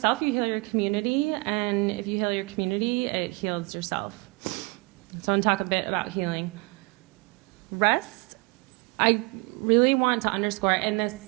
you heal your community, and if you heal your community, it heals yourself. So I want to talk a bit about healing. Rest, I really want to underscore in this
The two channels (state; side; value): quieter; left; 27.8 dB